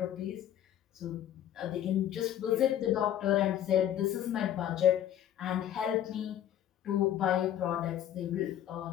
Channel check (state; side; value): quieter; right; 11.0 dB